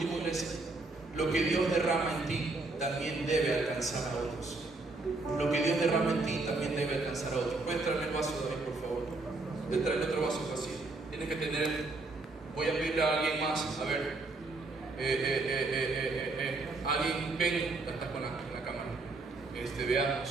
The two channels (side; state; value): left; quieter; 3.4 dB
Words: iglesia, lo que Dios derrama en ti también debe alcanzar a otros. Lo que Dios derrama en ti también debe alcanzar a otros. ¿Puedes traerme el vaso, David, por favor? Puedes traerme otro vaso vacío. Tienes que tener, voy a pedirle a alguien más, a ver, alguien, ven, estás con la cámara.